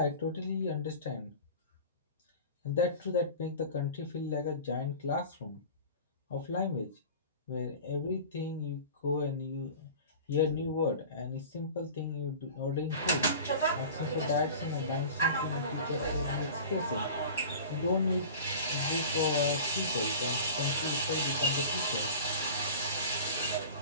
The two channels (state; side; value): inverted; both; correlation -0.38